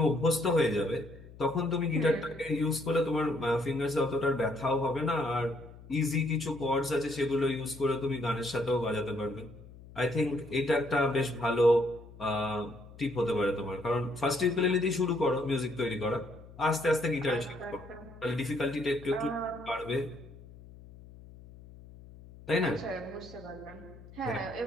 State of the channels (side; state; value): left; noise; hum, 19 dB below the sound